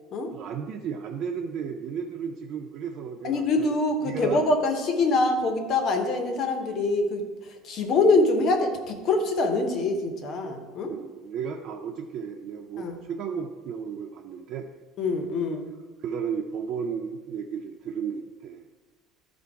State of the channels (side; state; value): both; normal; correlation 0.48